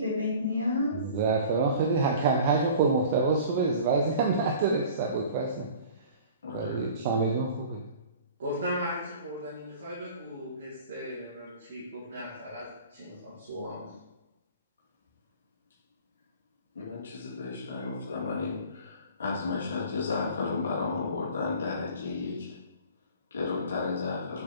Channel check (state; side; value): inverted; both; correlation -0.44